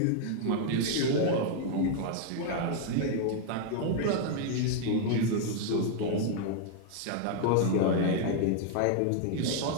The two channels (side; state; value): both; different; correlation 0.00